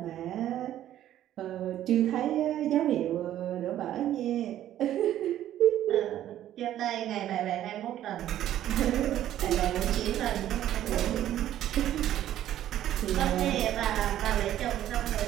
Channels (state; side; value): quieter; left; 12.2 dB